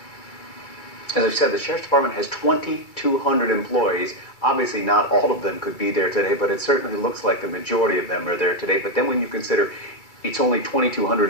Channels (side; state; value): right; late; 2.3 ms